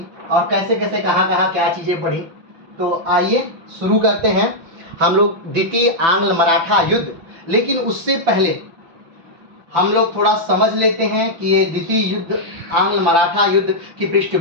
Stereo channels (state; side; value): late; left; 5.9 ms